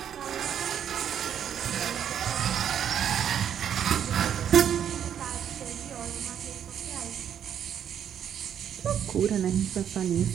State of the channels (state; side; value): quieter; left; 9.1 dB